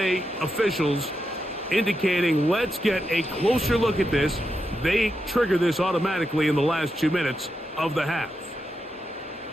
officials, indicating let's get a closer look at this. They trigger this automatically in the last 2 minutes of the half.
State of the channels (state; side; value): normal; both; correlation 0.86